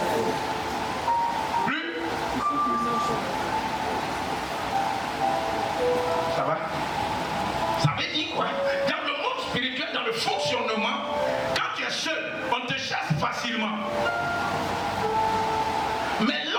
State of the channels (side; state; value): both; identical; correlation 1.00